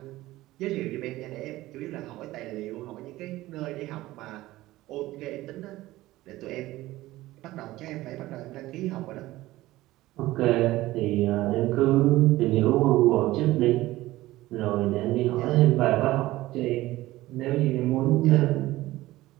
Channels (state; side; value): quieter; left; 17.2 dB